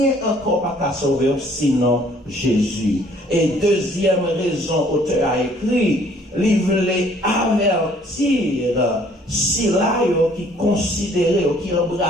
encore pas qu'à sauver sinon Jésus. Et deuxième raison, auteur a écrit, il voulait avertir si là qui considérait, qui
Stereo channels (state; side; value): normal; both; correlation 0.59